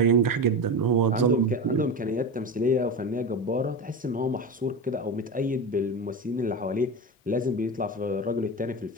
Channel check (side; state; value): both; normal; correlation 0.23